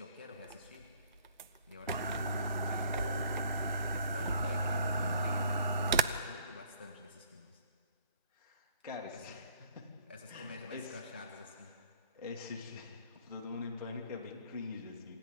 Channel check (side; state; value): both; inverted; correlation -0.56